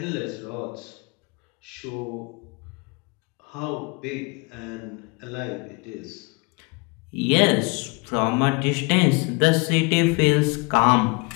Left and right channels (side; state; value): right; quieter; 29.7 dB